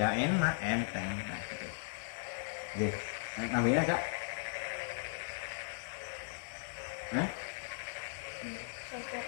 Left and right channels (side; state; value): right; silent; digital silence